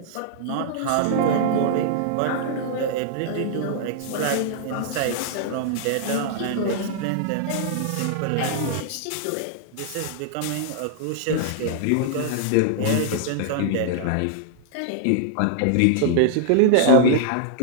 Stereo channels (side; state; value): both; different; correlation -0.01